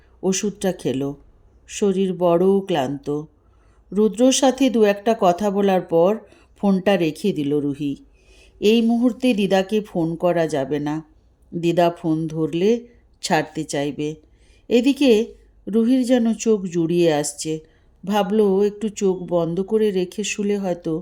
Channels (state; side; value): identical; both; correlation 1.00